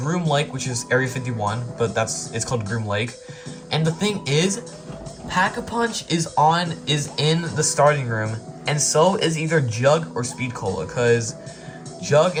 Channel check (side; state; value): both; identical; correlation 1.00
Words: Lake, which is Area 51, but it's called Groom Lake. And the thing is, Pack-a-Punch is in the starting room, and so is either Jug or Speed Cola, because Jug